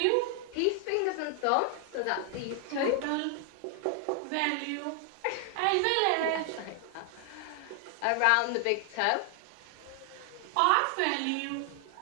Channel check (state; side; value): different; both; correlation 0.00